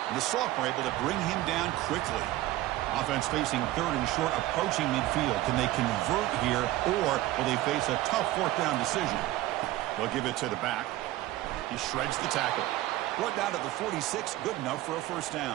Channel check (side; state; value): left; quieter; 16.2 dB